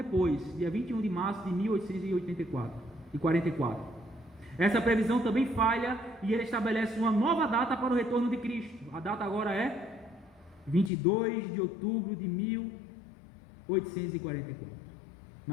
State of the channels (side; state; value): right; drops out; at 10.9 s